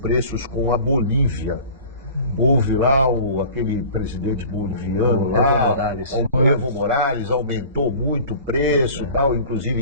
com a Bolívia, houve lá aquele presidente boliviano lá, o Evo Morales, aumentou muito o preço, tal,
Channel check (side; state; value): both; inverted; correlation -0.42